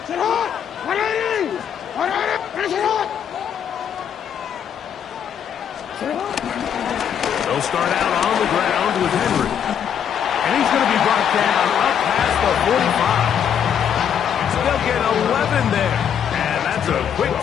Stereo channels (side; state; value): right; quieter; 8.6 dB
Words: They'll start out on the ground with Henry. And he's going to be brought down up past the 45. They'll get 11 there. And that's a quick